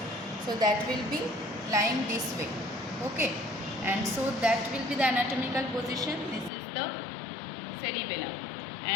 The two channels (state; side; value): drops out; right; at 6.5 s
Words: so that will be lying this way. Okay, and so that will be the anatomical position. This is the cerebellum